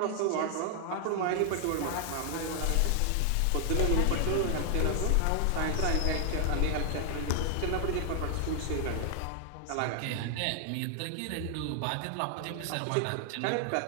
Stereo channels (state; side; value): different; both; correlation 0.00